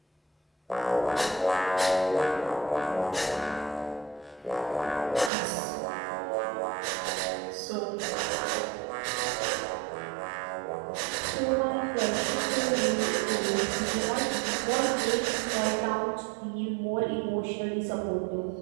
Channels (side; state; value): left; drops out; at 5.3 s